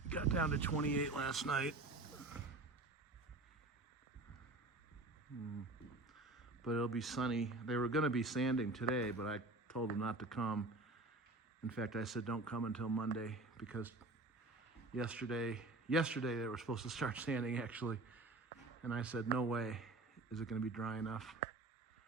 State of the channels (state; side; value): quieter; left; 3.0 dB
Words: Got down to 28 last night. But it'll be sunny. They were going to be sanding today, but I told them not to come. In fact, I said don't come until Monday, because yesterday they were supposed to start sanding actually. And I said, no way is it going to be dry enough.